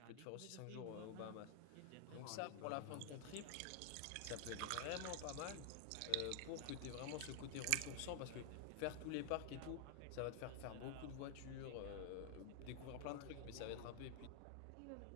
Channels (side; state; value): both; different; correlation 0.00